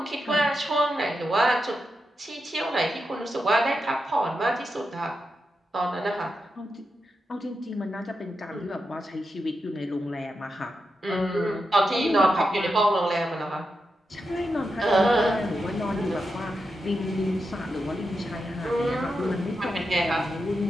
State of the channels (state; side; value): normal; both; correlation 0.87